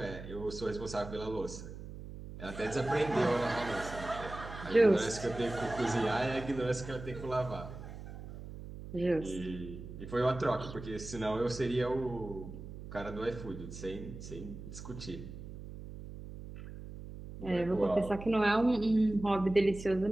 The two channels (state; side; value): noise; right; hum, 12 dB below the sound